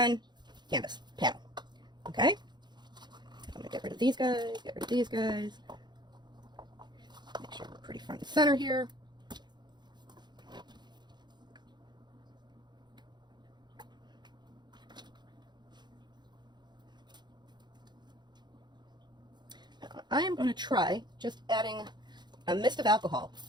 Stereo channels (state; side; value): late; left; 0.21 ms